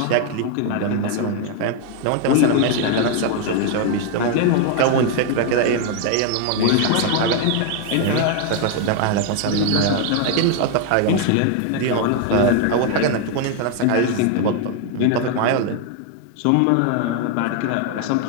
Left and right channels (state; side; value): different; both; correlation 0.01